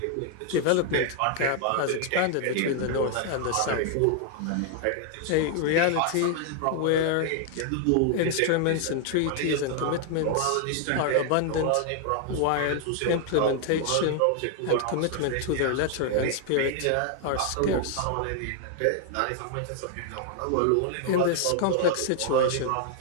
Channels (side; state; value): both; different; correlation 0.00